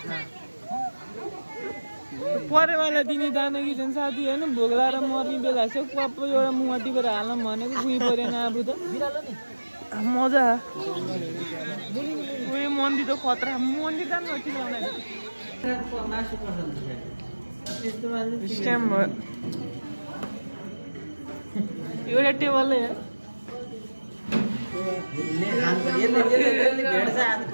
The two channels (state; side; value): inverted; both; correlation -1.00